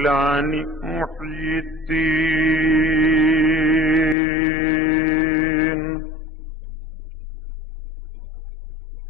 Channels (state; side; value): drops out; right; at 4.2 s